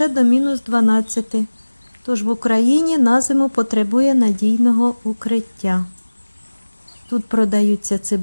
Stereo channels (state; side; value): inverted; both; correlation -1.00